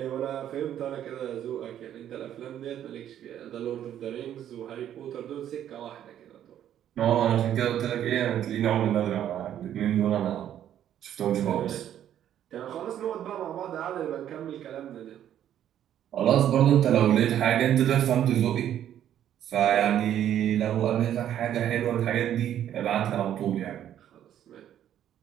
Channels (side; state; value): left; quieter; 10.8 dB